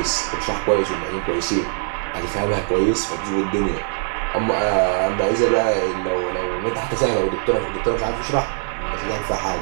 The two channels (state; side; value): silent; left; 65 dB below the other